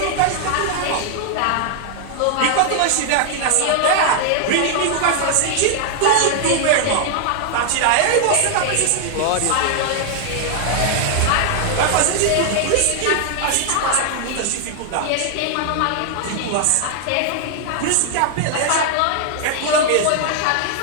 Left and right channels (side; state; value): both; different; correlation 0.00